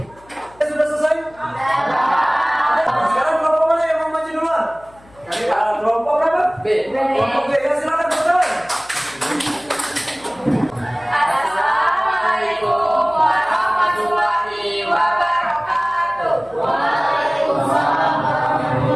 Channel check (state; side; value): noise; left; hum, 27 dB below the sound